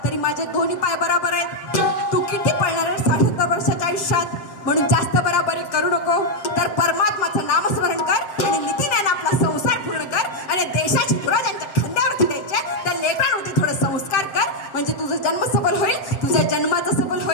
तरी माझे दोन्ही पाय बराबर आहेत. तू किती पळणार आहे 60 वर्षाच्या आयुष्यात, म्हणून जास्त बराबरी करू नको. तर परमात्माचं नामस्मरण कर आणि नीतीने आपला संसार पूर्ण कर आणि देशाची धुरा ज्यांच्या खांद्यावरती द्यायचे त्या लेकरांवरती थोडं संस्कार कर, म्हणजे तुझं जन्म सबल होईल, तुझ्या जन्माचं सबल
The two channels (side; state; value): right; late; 7.7 ms